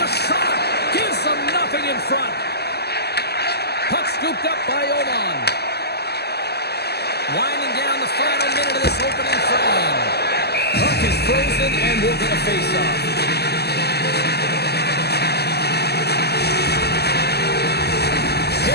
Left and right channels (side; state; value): right; late; 0.47 ms